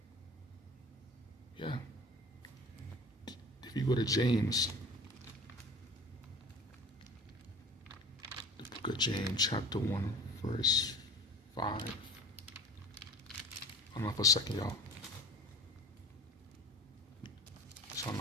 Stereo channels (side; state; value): both; normal; correlation 0.38